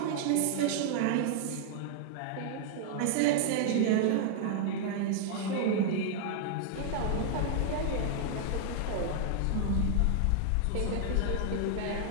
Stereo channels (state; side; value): different; both; correlation -0.01